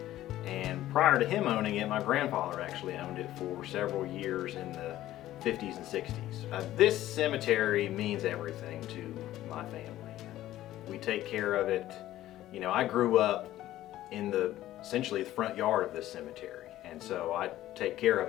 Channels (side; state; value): right; quieter; 14.2 dB